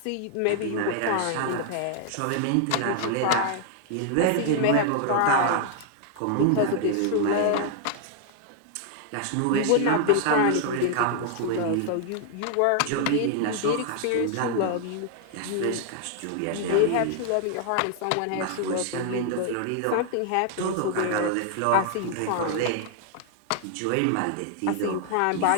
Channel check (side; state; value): both; different; correlation 0.00